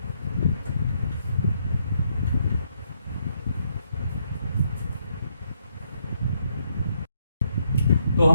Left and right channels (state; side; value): inverted; both; correlation -0.74